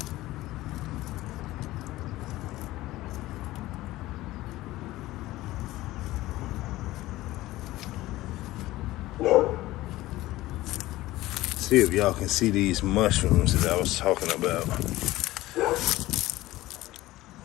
See if y'all can see these mushrooms that I was talking about.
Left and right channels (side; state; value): right; quieter; 17.2 dB